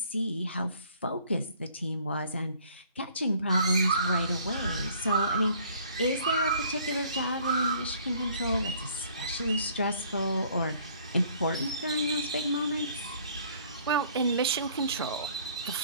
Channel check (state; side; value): inverted; both; correlation -0.58